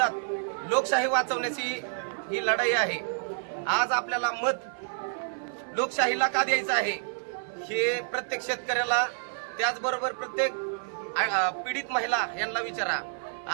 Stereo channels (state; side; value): silent; left; 55 dB below the other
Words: लोकशाही वाचवण्याची ही लढाई आहे। आज आपल्याला मत लोकशाहीला का द्यायचं आहे हे प्रत्येक शेतकऱ्याला त्याचबरोबर प्रत्येक पीडित महिला यांना विचारा।